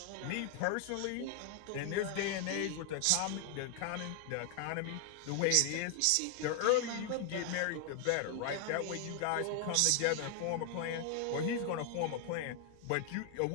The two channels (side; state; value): both; different; correlation 0.00